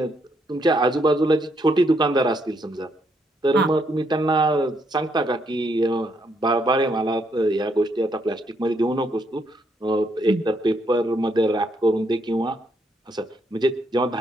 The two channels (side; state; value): both; normal; correlation 0.75